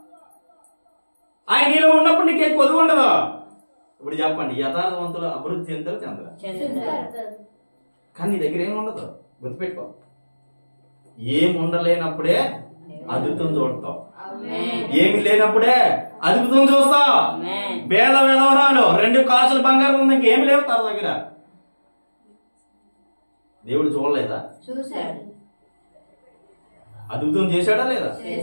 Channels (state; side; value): inverted; both; correlation -1.00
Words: ఆయన నీలో ఉన్నప్పుడు నీకేం కొదువు ఉండదు. ఇప్పుడు చెప్పండి, యథార్థవంతులు అభివృద్ధి చెందుతారు చెందరు. కానీ నీ దగ్గర ఏమి ఉండదు. గుర్తుపెట్టుకో, ఏం ఉండలేనప్పుడే అద్భుతం చూడతావు. ఏమి లేనప్పుడే అద్భుతం చూస్తావు. వేల వెలవరాలు 2 కాసులు బంగారం ఉంది, ఇంకేమి లేవు తన దగ్గర. దేవుడు చూడలేదా? చూశాడు. అద్భుతం చేశాడా లేదా?